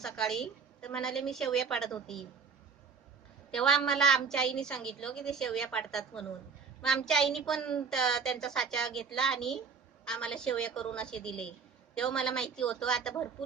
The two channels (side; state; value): left; quieter; 5.8 dB